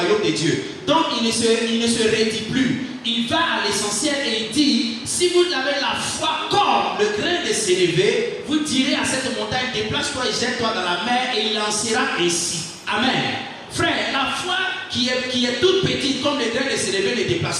de Dieu. Donc il ne se redit plus. Il va à l'essentiel et il dit, si vous avez la foi comme le grain de sénévé, vous direz à cette montagne, déplace-toi et jette-toi dans la mer et il en sera ainsi. Amen. Frère, la foi qui est toute petite comme le grain de sénévé ne déplace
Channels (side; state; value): both; identical; correlation 1.00